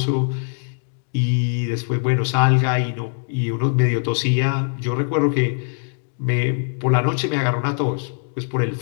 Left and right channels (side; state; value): right; silent; digital silence